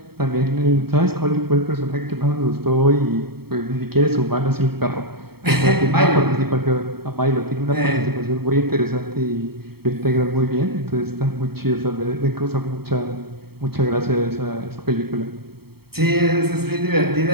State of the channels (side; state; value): left; late; 0.95 ms